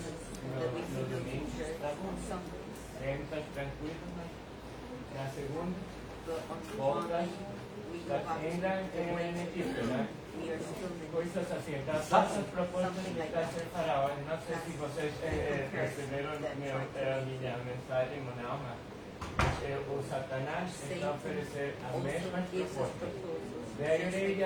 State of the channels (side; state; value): both; identical; correlation 1.00